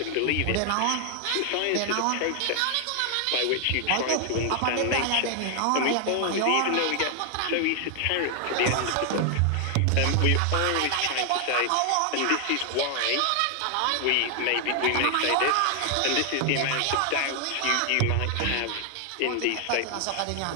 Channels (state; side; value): different; both; correlation 0.00